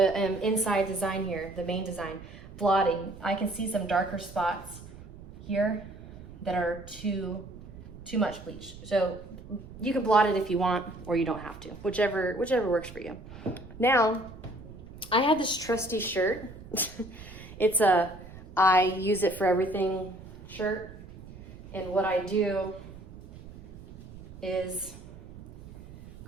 inside design here, the main design, blotting, I can see some darker spots here that are too much bleach. So you can blot it if you want, or you don't have to, whichever works for you. Now, I have this trusty shirt. It's a I use it for everything shirt. And what I do is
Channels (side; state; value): right; noise; rumble, 16 dB below the sound